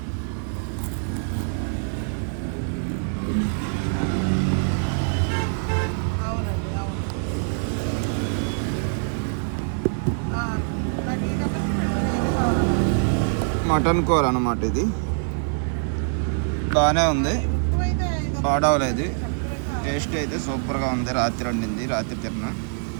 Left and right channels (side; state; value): left; silent; digital silence